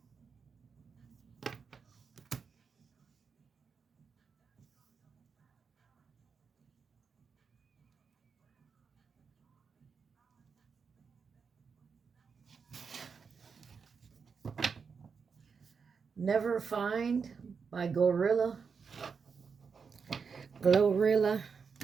Never Find by Glorilla.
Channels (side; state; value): left; quieter; 5.7 dB